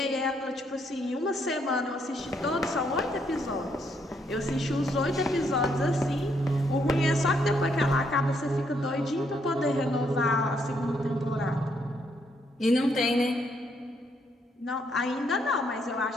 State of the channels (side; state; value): both; normal; correlation 0.73